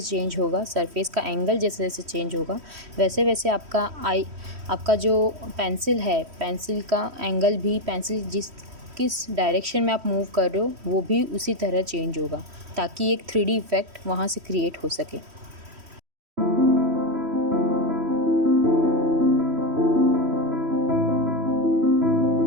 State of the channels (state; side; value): late; left; 3.1 ms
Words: चेंज होगा, सरफेस का एंगल जैसे जैसे चेंज होगा, वैसे वैसे आपका जो पेंसिल है, पेंसिल का एंगल भी, पेंसिल किस डायरेक्शन में आप मूव कर रहे हो वो भी उसी तरह चेंज होगा, ताकि एक 3D इफ़ेक्ट वहाँ से क्रिएट हो सके।